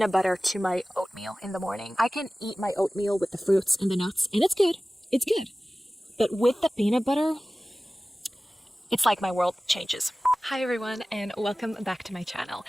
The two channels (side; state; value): both; normal; correlation 0.97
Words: butter to my oatmeal in the morning. I can eat my oatmeal with the fruits and the nuts, and it's good. It's good. But with the peanut butter, it's like my world changes. Hi everyone, and welcome back to my channel.